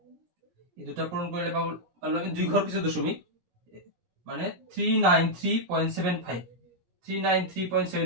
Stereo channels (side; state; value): left; late; 17 ms